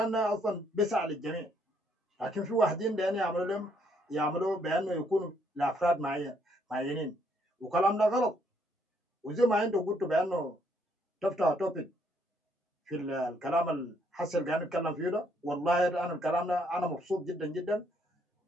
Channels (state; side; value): normal; both; correlation 0.70